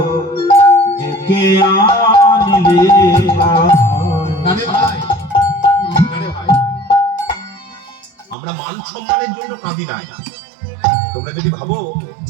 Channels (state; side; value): drops out; left; at 8.3 s